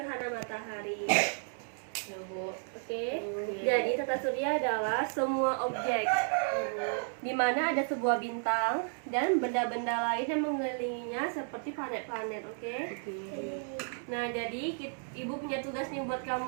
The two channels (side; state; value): left; silent; 56 dB below the other